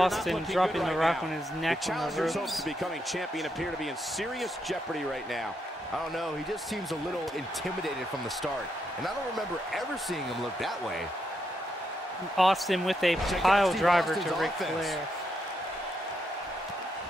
not looking dropping good the right Rock now. on his neck The on the challenger's ropes. hopes of becoming champion appear to be in serious jeopardy right now. I don't know, he just seems a little intimidated from the start. And I don't remember ever seeing him look that way. Austin with a Check out pile Steve driver Austin's to Ric offense. Flair.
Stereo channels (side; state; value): both; normal; correlation 0.80